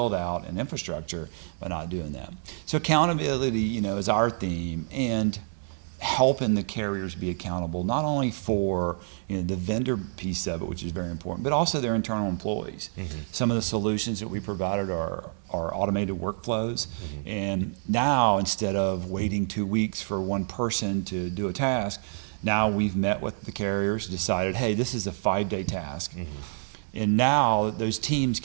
out and infrastructure by not doing that. So accountability, is our theme, and helping the carriers be accountable not only for the vendor piece of it, which is very important, but also their internal employees. Mm-hmm. Some of the solutions that we provided are automated workflows, Mm-hmm. and now instead of waiting 2 weeks for one person to do a task, now we've met with the carriers, decided, hey, this is a 5-day task. Mm-hmm. And now those teams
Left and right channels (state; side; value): silent; left; 59 dB below the other